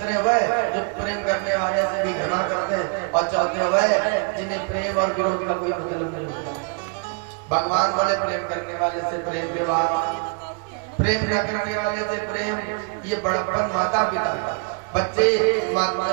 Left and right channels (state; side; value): quieter; left; 35.8 dB